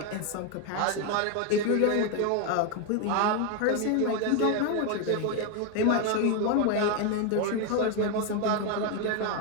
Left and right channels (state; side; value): different; both; correlation 0.01